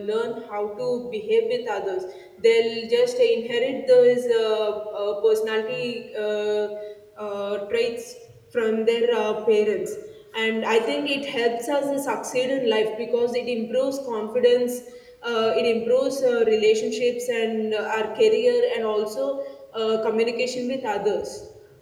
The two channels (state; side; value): identical; both; correlation 1.00